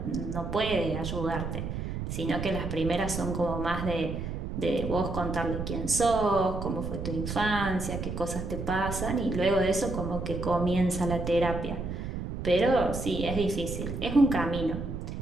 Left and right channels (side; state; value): right; noise; rumble, 5 dB below the sound